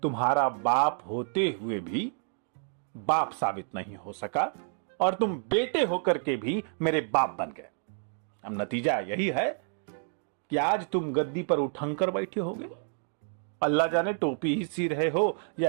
तुम्हारा बाप होते हुए भी बाप साबित नहीं हो सका और तुम बेटे होकर के भी मेरे बाप बन गए। अब नतीजा यही है कि आज तुम गद्दी पर उठंकर बैठे होगे। अल्लाह जाने टोपी ही सी रहे हो या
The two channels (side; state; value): left; silent; 58 dB below the other